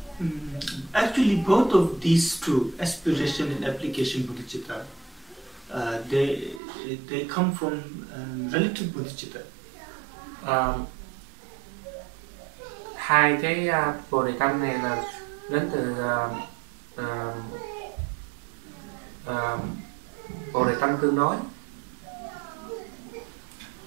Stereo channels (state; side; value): drops out; left; at 6.6 s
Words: actually both of these two, aspiration and application bodhicitta, they come from relative bodhicitta. Hai cái bồ đề tâm này là đến từ bồ đề tâm tương đối.